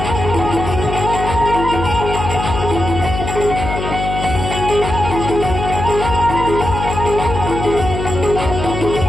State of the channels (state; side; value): noise; left; hum, 5 dB below the sound